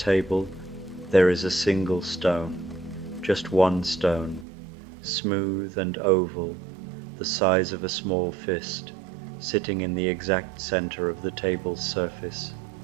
there is a single stone, just one stone, smooth and oval, the size of a small fist, sitting in the exact center of the table's surface.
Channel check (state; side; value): drops out; left; at 4.5 s